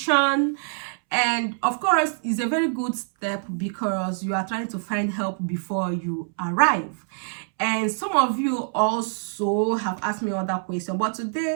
And of course, it's a very good step because you are trying to find help before you arrive. And some of you also have asked me other questions, but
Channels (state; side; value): silent; left; 62 dB below the other